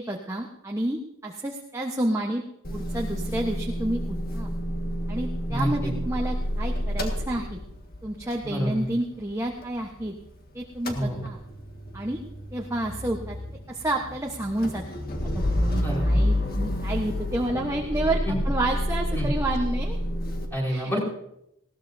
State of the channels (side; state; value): both; normal; correlation 0.83